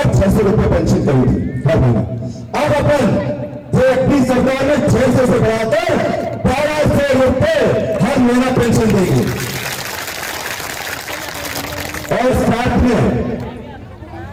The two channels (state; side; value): identical; both; correlation 1.00